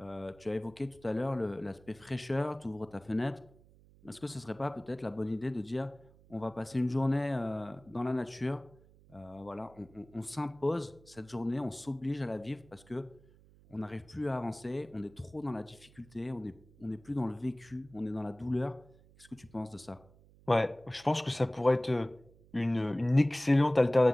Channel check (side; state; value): right; noise; hum, 26 dB below the sound